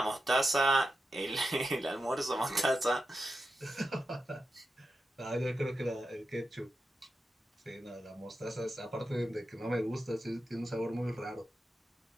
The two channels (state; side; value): normal; both; correlation 0.89